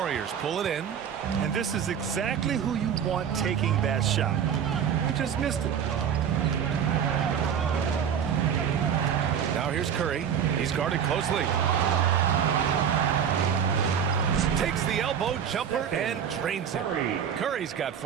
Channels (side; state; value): left; quieter; 8.2 dB